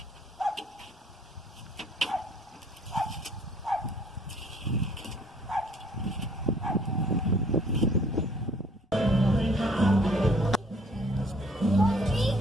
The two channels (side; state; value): both; normal; correlation 0.60